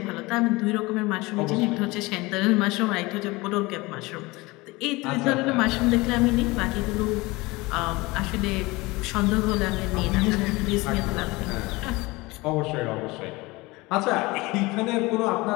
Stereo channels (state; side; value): quieter; right; 22.6 dB